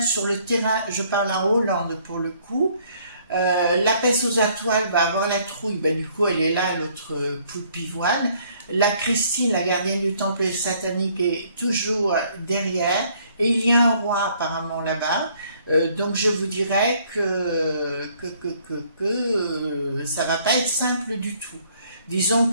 sur le terrain. Je parle en Hollande pour le coup. La peste aux étoiles va avoir la trouille. Ben, du coup, elle est là, l'autre poule pivoine. La Christine, la gardienne du temple satanique, est toujours derrière. Et il y a un roi apparemment là-bas. Donc je vous dirais que ça va pas être simple du tout. Disons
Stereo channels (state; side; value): inverted; both; correlation -0.63